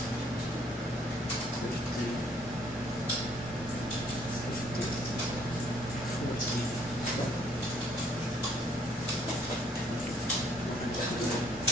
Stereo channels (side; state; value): both; normal; correlation 0.63